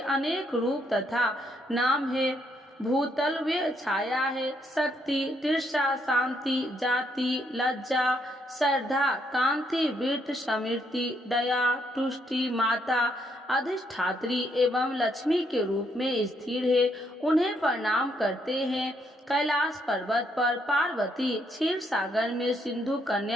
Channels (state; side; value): normal; both; correlation 0.74